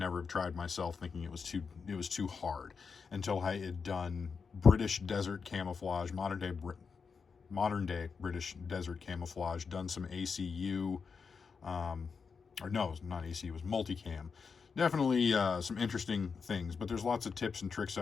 have tried myself, thinking it was too hard, until I had done British desert camouflage, modern day British desert camouflage, done some ACU, or no, not ACU, it was multicam. Definitely some interesting things, but there's lots of tips and tricks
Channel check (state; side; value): quieter; right; 5.5 dB